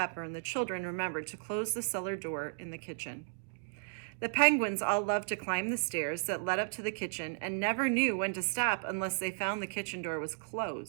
and the children remembered to close the cellar door in the kitchen. The penguins all loved to climb the stairs that led up to the kitchen and never knew when to stop unless they found the kitchen door was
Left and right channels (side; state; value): left; silent; digital silence